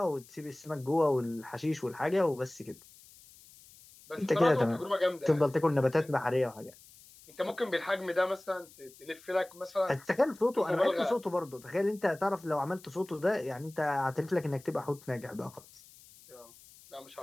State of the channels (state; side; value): noise; left; hiss, 23 dB below the sound